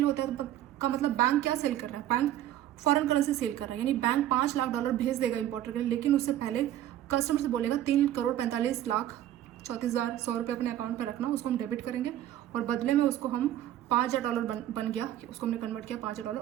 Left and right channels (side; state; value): left; quieter; 12.5 dB